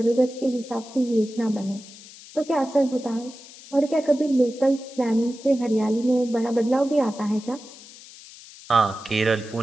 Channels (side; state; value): left; noise; hiss, 19 dB below the sound